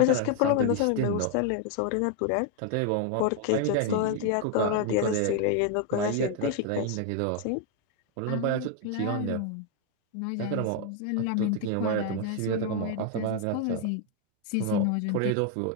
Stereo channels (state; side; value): different; both; correlation 0.00